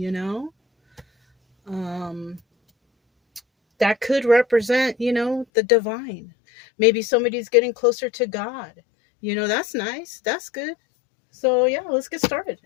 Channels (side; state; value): right; drops out; at 5.5 s